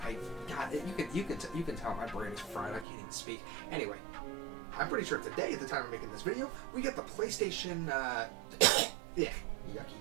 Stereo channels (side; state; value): left; drops out; at 2.9 s